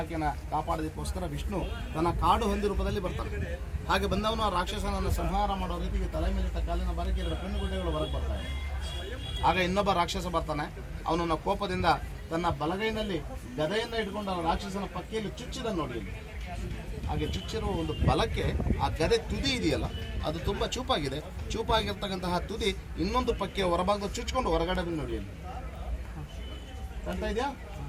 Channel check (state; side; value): identical; both; correlation 1.00